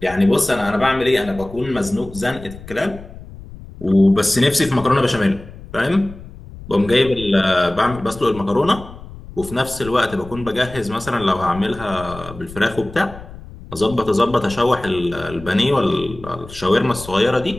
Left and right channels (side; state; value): left; noise; rumble, 16 dB below the sound